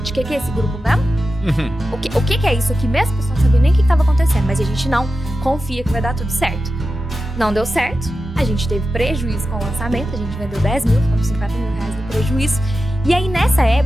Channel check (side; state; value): both; normal; correlation 0.92